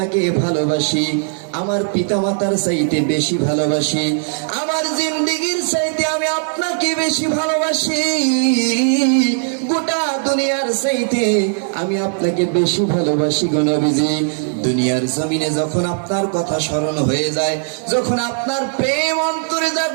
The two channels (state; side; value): silent; left; digital silence